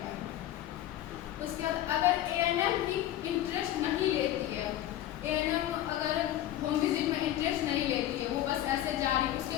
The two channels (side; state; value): right; quieter; 13.0 dB